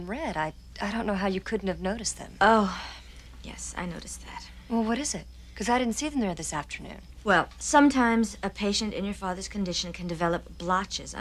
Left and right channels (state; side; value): identical; both; correlation 1.00